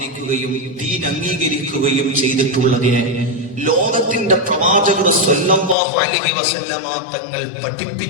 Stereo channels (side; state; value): right; drops out; at 5.8 s